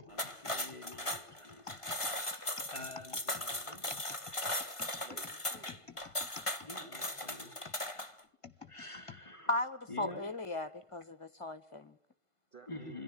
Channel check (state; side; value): late; right; 1.5 ms